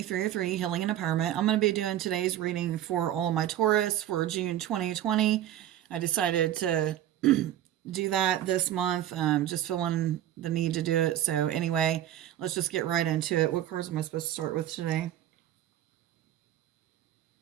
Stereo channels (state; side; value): quieter; left; 12.1 dB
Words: 303 Healing and Empowerment. I'm going to be doing today's reading for all my Taurus for June 2020. I decided to do that this month, just feeling the need to do it. So anyway, let's just get right into it. What cards am I supposed to start with today?